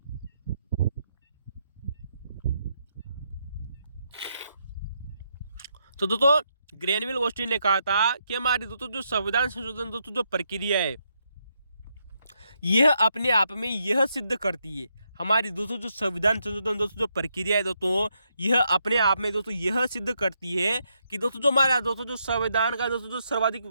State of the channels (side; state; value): both; inverted; correlation -0.79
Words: तो दोस्तों ग्रेनविल ऑस्टिन ने कहा था कि हमारी दोस्तों जो संविधान संशोधन दोस्तों जो प्रक्रिया है यह अपने आप में यह सिद्ध करती है, हमारी दोस्तों जो संविधान संशोधन दोस्तों जो प्रक्रिया है दोस्तों यह अपने आप में दोस्तों यह सिद्ध करती है कि दोस्तों जो हमारा दोस्तों जो संविधान का दोस्तों जो सर्वाधिक